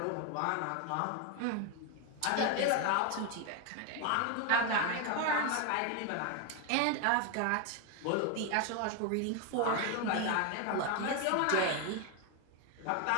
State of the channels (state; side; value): different; both; correlation 0.01